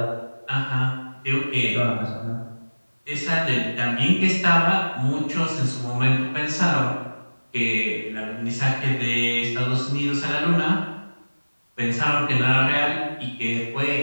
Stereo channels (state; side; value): inverted; both; correlation -1.00